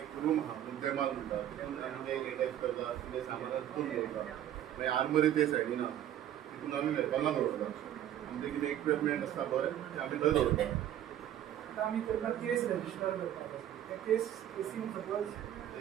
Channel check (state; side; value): quieter; left; 11.4 dB